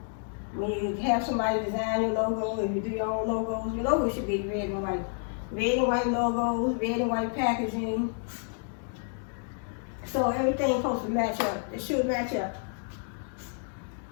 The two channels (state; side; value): silent; right; 58 dB below the other